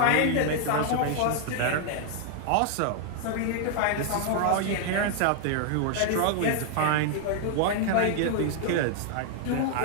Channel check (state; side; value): different; both; correlation 0.00